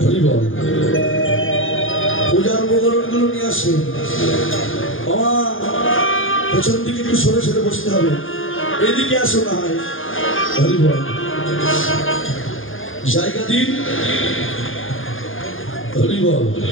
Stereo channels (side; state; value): right; late; 0.59 ms